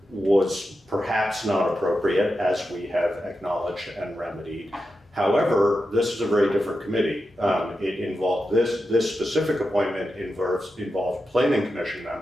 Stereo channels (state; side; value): normal; both; correlation 0.89